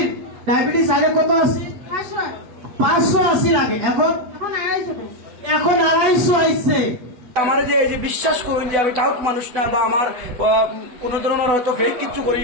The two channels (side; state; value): left; late; 8.1 ms